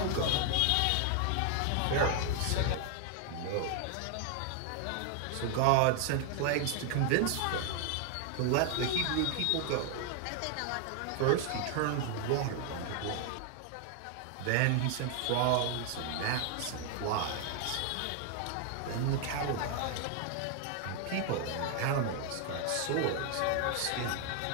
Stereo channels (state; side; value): different; both; correlation 0.00